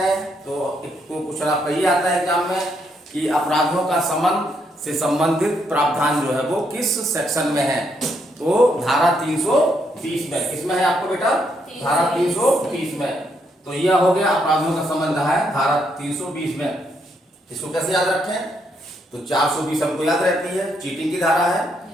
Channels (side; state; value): both; normal; correlation 0.75